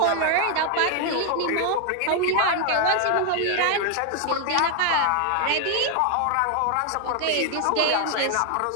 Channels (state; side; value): different; both; correlation 0.00